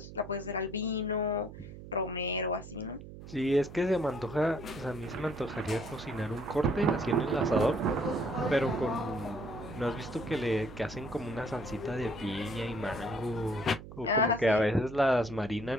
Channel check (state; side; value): noise; right; hum, 14 dB below the sound